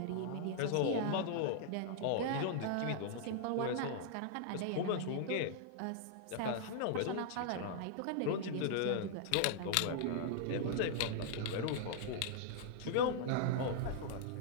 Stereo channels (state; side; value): different; both; correlation -0.01